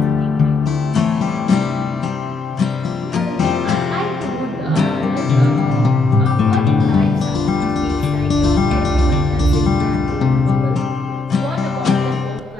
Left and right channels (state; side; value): quieter; right; 3.3 dB